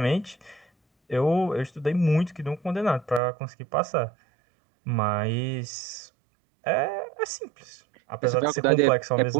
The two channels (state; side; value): drops out; left; at 3.2 s